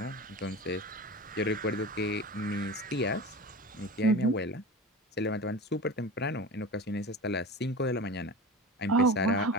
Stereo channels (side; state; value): both; normal; correlation 0.31